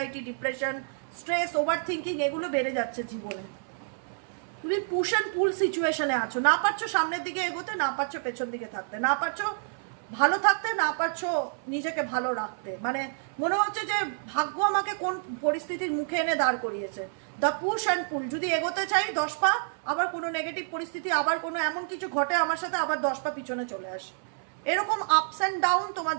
depression, stress, over thinking এগুলো বেড়ে যাচ্ছে জীবনে। তুমি পুশ অ্যান্ড পুল সিচুয়েশনে আছো, না পারছো সামনের দিকে এগোতে, না পারছো পেছন দিকে থাকতে, না পারছো ভালো থাকতে, না পারছো নিজেকে ভালো রাখতে। মানে মনে হচ্ছে যে ভাগ্য আমাকে কোন পরিস্থিতির মুখে এনে দাঁড় করিয়েছে। দ্য পুশ অ্যান্ড পুল, যদি এগোতে চাই 10 পা, আবার কোনো নেগেটিভ পরিস্থিতি, আবার কোনো এমন কিছু ঘটে আমার সাথে, আবার 10 পা পিছনে চলে আসে। এরকম আপস অ্যান্ড ডাউন তোমার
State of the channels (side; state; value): left; silent; 59 dB below the other